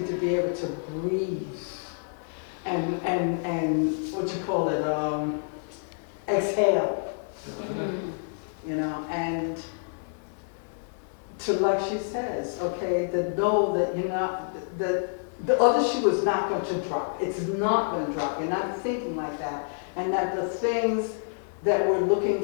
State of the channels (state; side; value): silent; right; 57 dB below the other